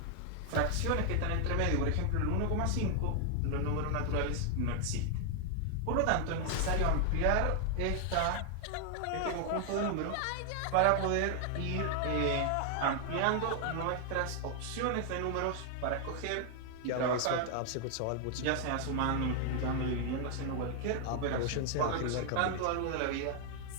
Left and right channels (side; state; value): both; different; correlation 0.00